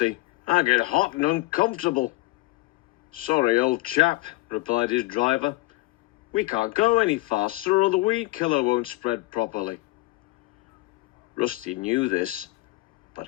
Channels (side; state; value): right; quieter; 20.9 dB